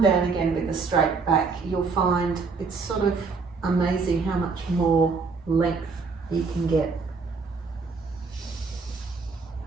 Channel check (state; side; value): quieter; left; 4.6 dB